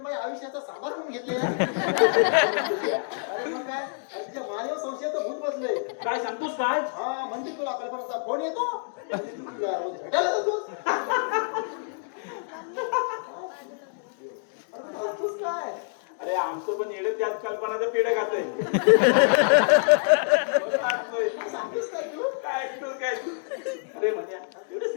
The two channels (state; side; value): silent; right; 60 dB below the other